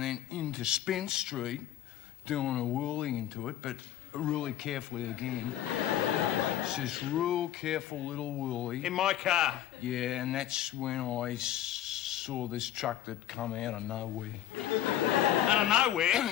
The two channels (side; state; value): right; quieter; 12.0 dB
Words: then into Spence Street, doing a whirly into it, but really carefully again. It's this real careful little whirly. In my car? Yeah, and that's when I saw this truck that come out of nowhere. Out of nowhere?